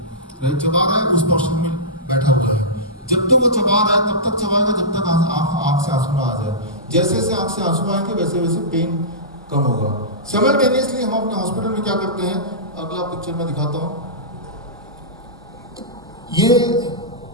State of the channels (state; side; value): normal; both; correlation -0.17